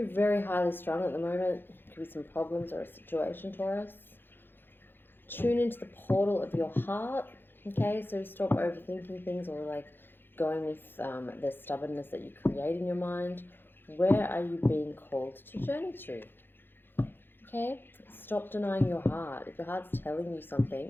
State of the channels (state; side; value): late; right; 0.10 ms